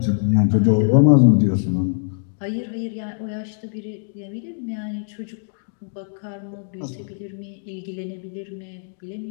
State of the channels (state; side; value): silent; right; digital silence